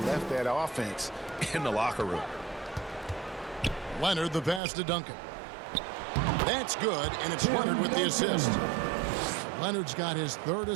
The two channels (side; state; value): left; drops out; at 4.6 s